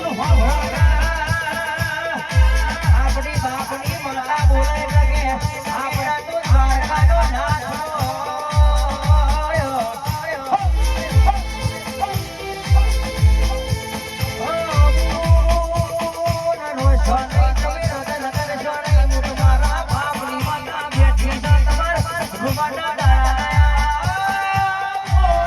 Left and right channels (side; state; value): both; identical; correlation 1.00